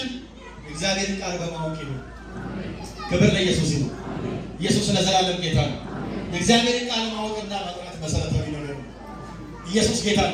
እግዚአብሔርን ቃል በማወቅ ይሁን። ክብር ለኢየሱስ ይሁን። ኢየሱስ ለዘላለም ጌታ ነው። የእግዚአብሔርን ቃል ማወቅና መጥራት መሰረታዊ ነገር ነው። ኢየሱስ ጌታ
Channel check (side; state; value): both; identical; correlation 1.00